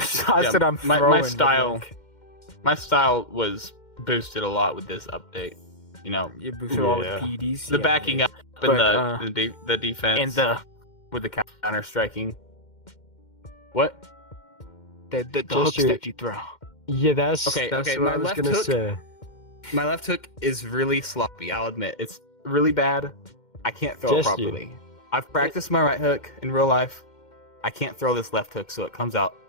Yeah, that I'm my throwing. style- like, my style was boosted a lot with this update. you boosted all the Yeah. PDs. The yeah, backing yeah. up and But, the defense and the with the counter striking. What? hooks Jester- that you throw. Yeah, that's Okay, what my I was left gonna hook- say. My left hook is really sloppy. I'll admit it's really bad. I can't throw it Jester. properly. I've practiced my right hook in real life. I can't throw this left hook, so it comes out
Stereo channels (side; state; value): right; late; 2.1 ms